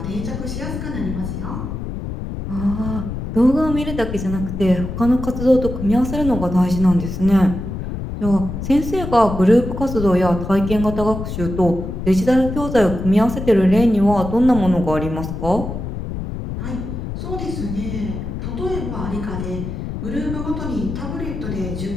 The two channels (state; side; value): noise; left; rumble, 6 dB below the sound